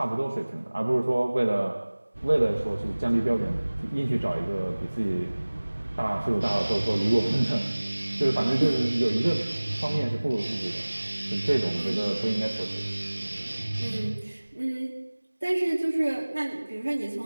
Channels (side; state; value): both; inverted; correlation -1.00